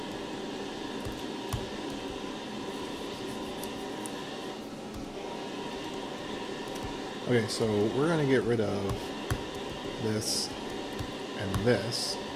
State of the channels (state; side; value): identical; both; correlation 1.00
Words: Okay, so we're going to get rid of this and this.